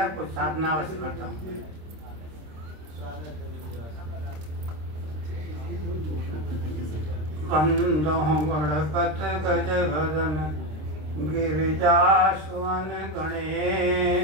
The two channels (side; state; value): left; late; 26 ms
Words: कुछ साधना अवश्य करता हूँ। वंदो गणपत गज भजन गिरिजा सुवन